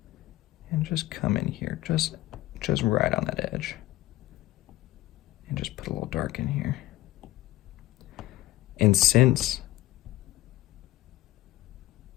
and just come in here, just right on that edge. And just put a little dark in here. And since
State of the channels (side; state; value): right; quieter; 16.3 dB